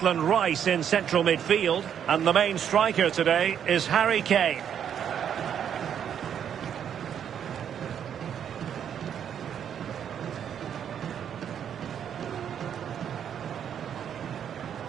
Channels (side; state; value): left; quieter; 8.8 dB